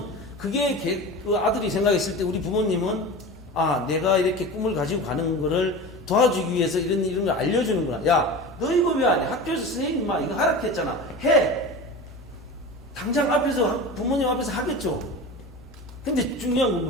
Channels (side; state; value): both; normal; correlation 0.31